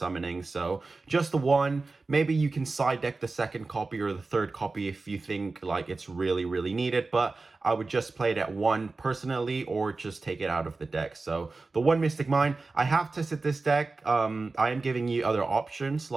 So just the 1. Maybe you can side deck the 2nd copy or the 3rd copy if you think like it's really needed, but I would just play it at 1 personally, or just take it out of the deck. So the 1 Mystic Mine. I have tested this deck. I am giving you other options,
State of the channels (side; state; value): left; quieter; 3.7 dB